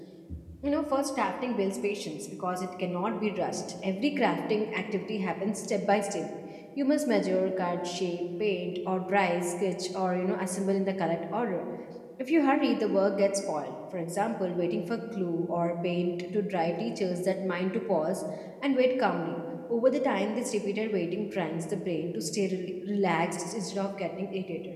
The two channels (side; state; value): both; identical; correlation 1.00